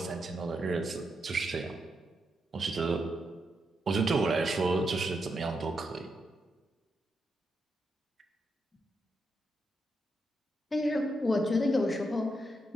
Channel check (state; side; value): normal; both; correlation 0.82